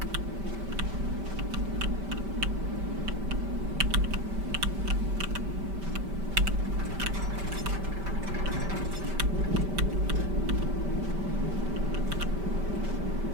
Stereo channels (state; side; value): late; left; 5.1 ms